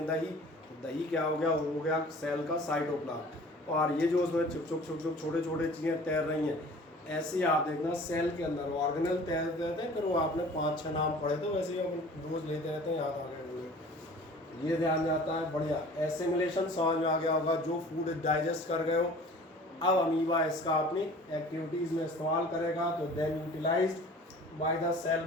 दही। तो दही क्या हो गया? वो हो गया सेल का साइटोप्लाज्म। और ये जो उसमें छुप छुप छोटे छोटे चीज़ें तैर रही हैं, ऐसे ही आप देखना सेल के अंदर ऑर्गेनल तैरते रहते हैं। फिर वो आपने 5-6 नाम पढ़े तो वैसे ही अपन रोज लेते रहते हैं, याद आ गए होंगे। ये ध्यान जाता है, बढ़िया। एसिमिलेशन समझ में आ गया होगा, जो फूड डाइजेस्ट कर गए हो। अब अमीबा इसका अपनी एक्टिविटीज़ में इस्तेमाल करेगा, तो then utilized by the cell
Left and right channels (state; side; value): normal; both; correlation 0.46